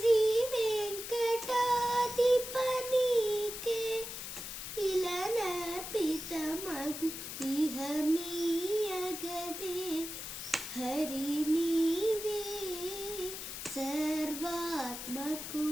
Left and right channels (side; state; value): left; noise; hiss, 7 dB below the sound